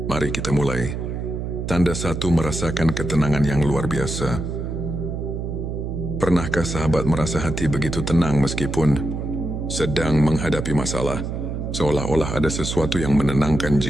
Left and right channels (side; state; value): right; noise; hum, 4 dB below the sound